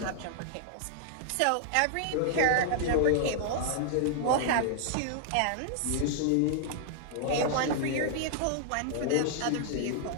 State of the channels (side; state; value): both; different; correlation -0.01